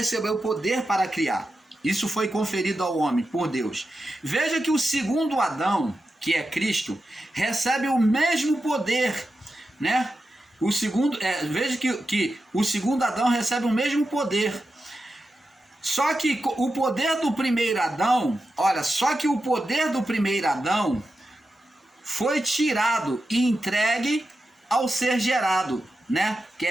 poder para criar. Isso foi conferido ao homem por Deus. Veja que o segundo Adão, que é Cristo, recebe o mesmo poder, né? Veja que o segundo Adão recebe o mesmo poder. Só que o poder do primeiro Adão, o poder do primeiro Adão foi tirado e entregue ao ser gerado, né?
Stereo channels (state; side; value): normal; both; correlation 0.90